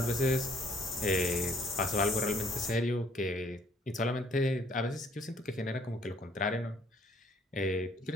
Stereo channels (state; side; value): normal; both; correlation 0.62